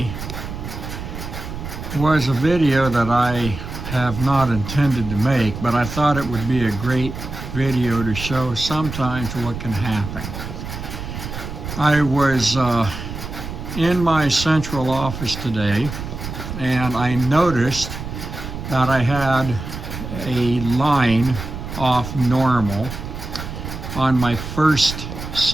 was a video that I have not intended to make, but I thought it would be a great video to show sometimes what can happen. I was in my central office today and I noticed that I had a line off normal on my first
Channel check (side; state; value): right; noise; rumble, 8 dB below the sound